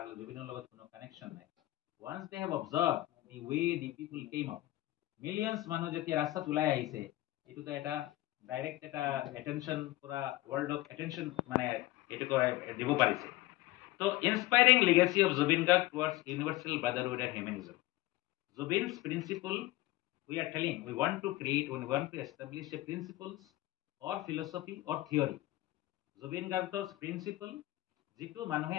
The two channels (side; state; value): right; quieter; 17.8 dB